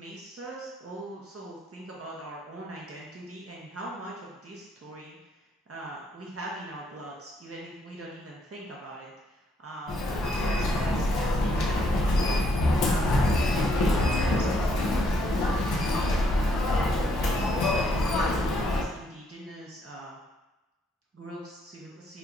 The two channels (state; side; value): normal; both; correlation 0.72